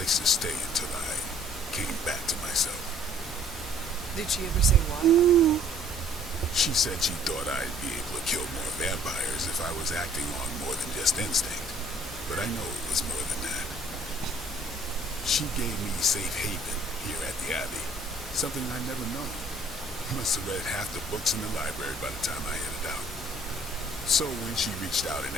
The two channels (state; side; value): normal; both; correlation 0.57